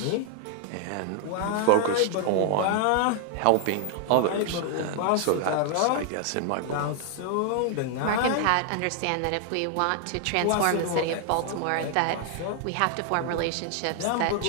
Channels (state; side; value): different; both; correlation 0.00